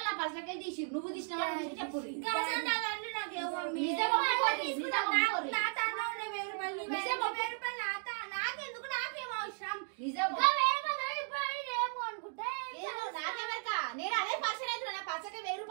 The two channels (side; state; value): left; silent; 54 dB below the other